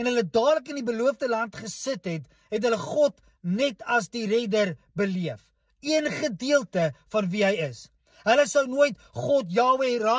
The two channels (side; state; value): both; identical; correlation 1.00